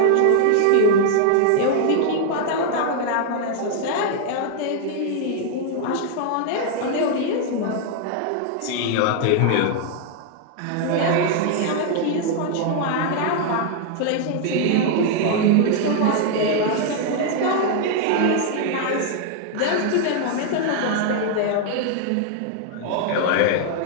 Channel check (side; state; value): both; different; correlation 0.00